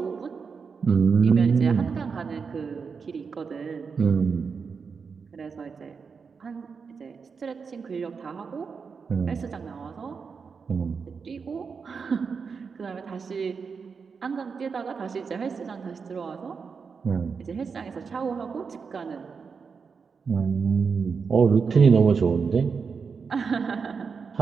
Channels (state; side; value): quieter; left; 5.5 dB